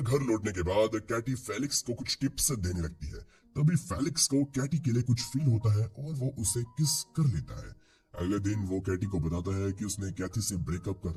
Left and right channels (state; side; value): identical; both; correlation 1.00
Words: लौटने के बाद कैटी फेलिक्स को कुछ टिप्स देने लगती है। तभी फेलिक्स को कैटी के लिए कुछ फील होता है और वो उसे किस कर लेता है। अगले दिन वो कैटी को बताता है कि उसने कैथी से ब्रेकअप कर